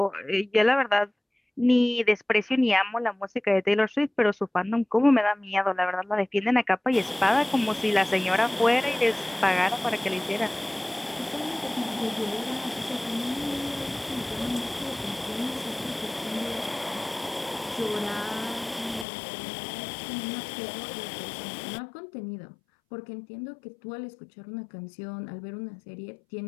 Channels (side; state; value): right; drops out; at 19.1 s